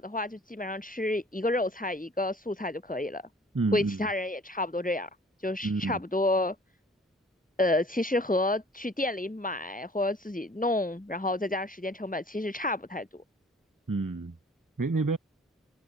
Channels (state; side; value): normal; both; correlation 0.51